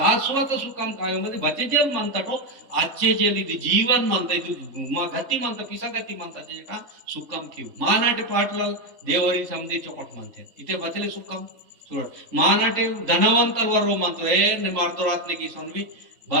सुखम काय मध्ये बचेजेल म्हणतात हो आजचे जेल ಇದು ಜೀವನ್ म्हणता ಇದು ಗತಿ म्हणता पिसागती म्हणता जे का सुखम किव मानाटे पाटलाल देवरी समधी चोकट म्हणते इथे बचले सुखम सोड मानाटे धनवंतल वरो म्हणतो ए ने मारतो रातने की सोनवी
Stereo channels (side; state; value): left; late; 4.0 ms